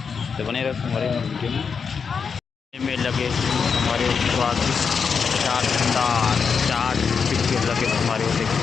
तो बने रहे संगवारी हो वीडियो में लगे संगवारी हो। चार दुकानदार चार पिक्चर लगे संगवारी हो।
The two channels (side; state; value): right; quieter; 5.9 dB